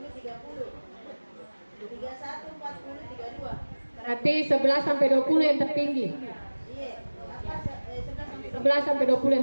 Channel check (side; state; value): both; inverted; correlation -1.00